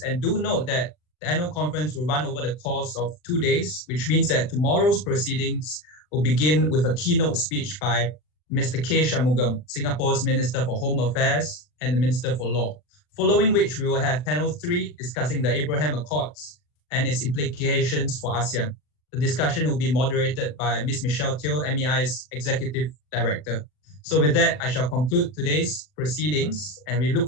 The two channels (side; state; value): right; late; 40 ms